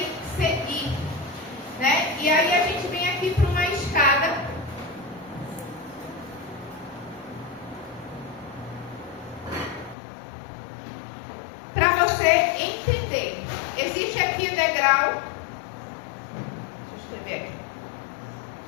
seguir, né? E aí a gente vem aqui para uma escada para você entender. Existe aqui o degrau. Deixa eu escrever aqui.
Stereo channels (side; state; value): right; drops out; at 10.0 s